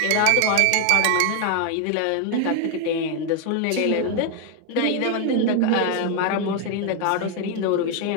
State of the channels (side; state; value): both; different; correlation 0.01